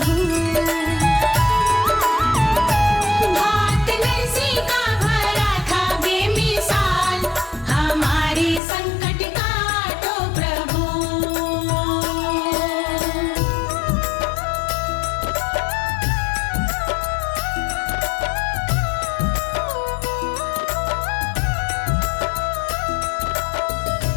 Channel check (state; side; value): drops out; right; at 8.6 s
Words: भात नरसी का भरा था बेमिसाल, हमारे संकट का तो प्रभु।